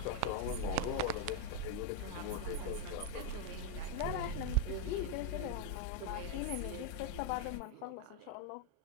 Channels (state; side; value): different; both; correlation 0.01